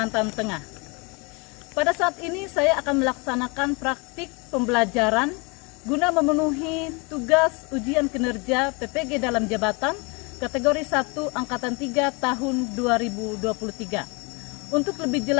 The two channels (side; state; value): right; quieter; 29.7 dB